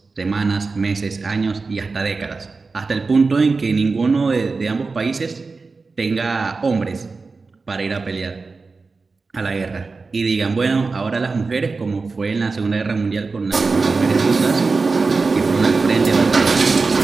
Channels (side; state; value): left; quieter; 4.2 dB